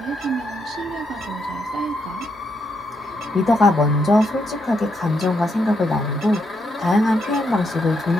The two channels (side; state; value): both; normal; correlation 0.79